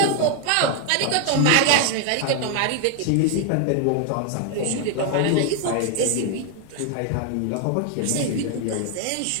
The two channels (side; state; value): both; different; correlation 0.00